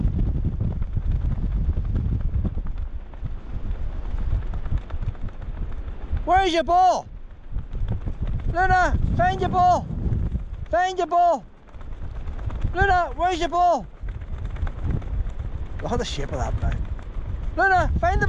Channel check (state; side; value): identical; both; correlation 1.00